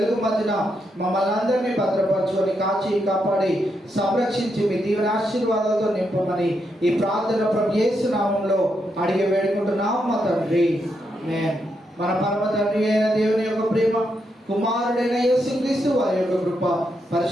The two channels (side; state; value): both; normal; correlation 0.81